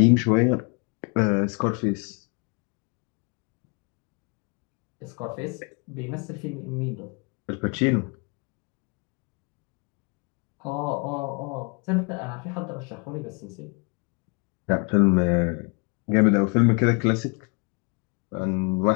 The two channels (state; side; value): quieter; right; 33.5 dB